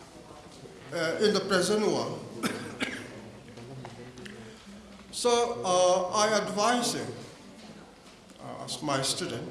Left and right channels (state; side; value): identical; both; correlation 1.00